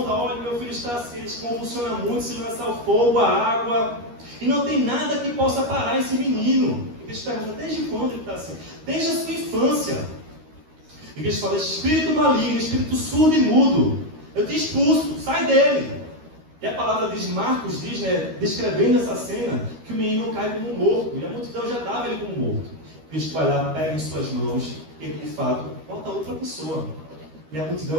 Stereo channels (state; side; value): late; left; 13 ms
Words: olha, meu filho está assim, ele se convulsiona muito, se lança ao fogo, a água. E não tem nada que possa parar esse menino. E Cristo pergunta: desde quando ele está assim? Desde a sua infância. E Cristo fala: espírito maligno, espírito surdo e mudo, eu te expulso, sai dele. E a palavra diz, Marcos diz, né, descrevendo essa cena, que o menino cai como morto. E a multidão já dava ele como morto. Cristo vai lá, pega em suas mãos, e ele de fato volta a outra pessoa. E a